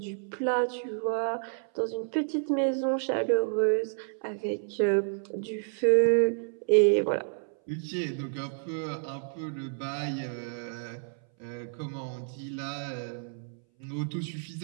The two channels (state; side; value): silent; left; 58 dB below the other